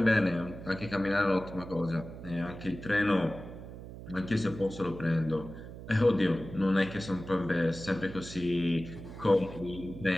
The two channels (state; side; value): noise; right; hum, 13 dB below the sound